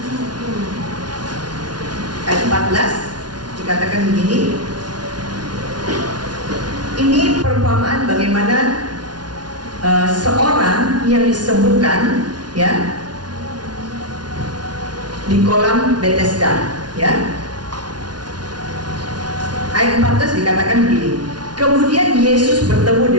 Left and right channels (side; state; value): left; late; 0.69 ms